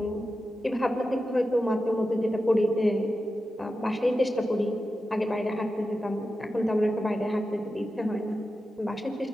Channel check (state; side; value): normal; both; correlation 0.91